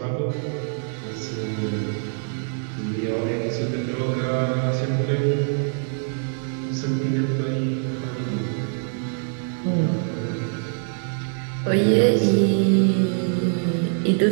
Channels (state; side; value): silent; left; 63 dB below the other